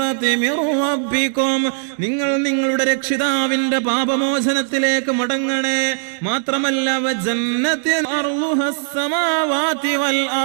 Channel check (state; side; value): silent; left; digital silence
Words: മിർ റബ്ബികും. നിങ്ങൾ നിങ്ങളുടെ രക്ഷിതാവിന്റെ പാപമോചനത്തിലേക്ക് മടങ്ങണേ. മാത്രമല്ല വജന്നത്തിൻ അർളുഹസ് സമാവാതി വൽ